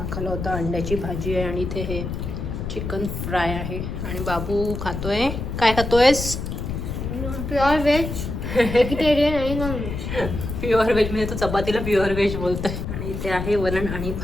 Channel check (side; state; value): left; noise; rumble, 5 dB below the sound